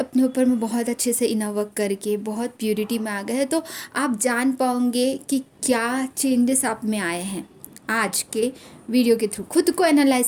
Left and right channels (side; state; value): both; identical; correlation 1.00